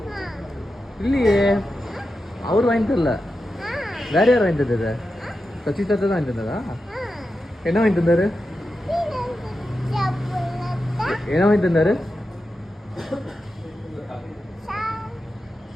இல்லையே அவர் வாங்கி தரல வேற யார் வாங்கி தந்தது சசி தாத்தா தான் வாங்கி தந்ததா என்ன வாங்கி தந்தாரு என்ன வாங்கி தந்தாரு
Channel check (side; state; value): both; normal; correlation 0.90